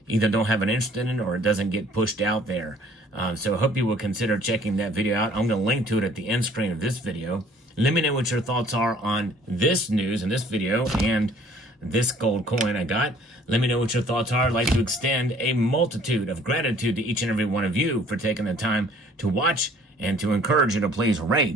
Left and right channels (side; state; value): both; normal; correlation 0.56